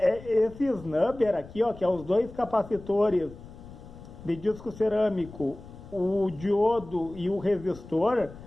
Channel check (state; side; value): noise; left; rumble, 17 dB below the sound